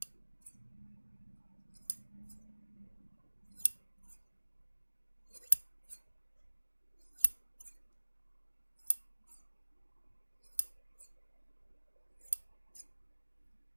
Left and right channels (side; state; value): both; inverted; correlation -1.00